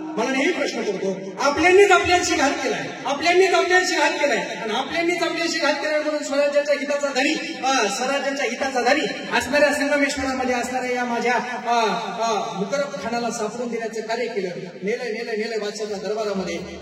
मला नेहमी प्रश्न पडतो, आपल्यांनीच आपल्याशी घात केलाय, आपल्यांनीच आपल्याशी घात केलाय आणि आपल्यांनीच आपल्याशी घात केलाय म्हणून स्वराज्याच्या हिताचा धनी, स्वराज्याच्या हिताचा धनी असणाऱ्या संगमेश्वरामध्ये असणाऱ्या या माझ्या मुकरब खानाला सापडून देण्याचं कार्य केलं. नेलंय बादशाहच्या दरबारामध्ये.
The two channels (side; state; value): both; identical; correlation 1.00